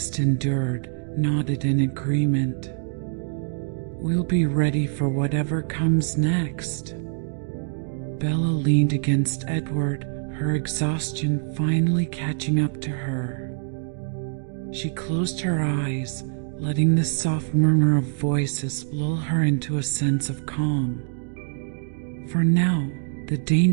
endured, nodded in agreement. "We'll be ready for whatever comes next." Bella leaned against Edward, her exhaustion finally catching up to her. She closed her eyes, letting the soft murmur of voices lull her into a sense of calm. For now, the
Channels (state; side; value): silent; left; 59 dB below the other